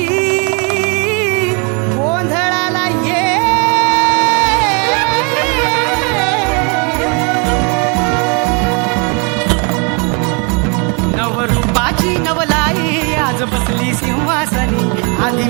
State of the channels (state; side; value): quieter; left; 34.4 dB